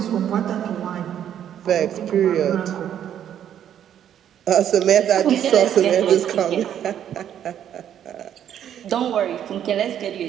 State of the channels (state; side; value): quieter; left; 10.0 dB